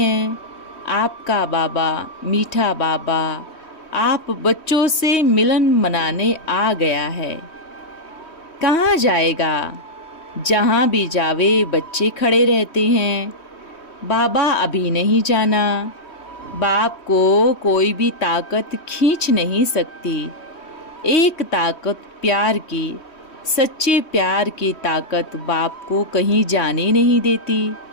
आपका बाबा, मीठा बाबा, आप बच्चों से मिलन मनाने आ गया है। कहाँ जाएगा? जहाँ भी जावे बच्चे खड़े रहते हैं। बाबा अभी नहीं जाना। बाप को कोई भी ताकत खींच नहीं सकती। एक ताकत प्यार की, सच्चे प्यार की ताकत बाप को कहीं जाने नहीं देती।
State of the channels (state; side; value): late; right; 3.1 ms